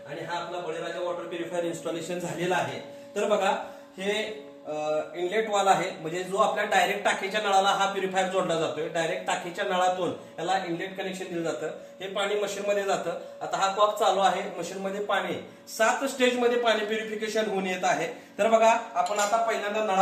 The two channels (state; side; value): identical; both; correlation 1.00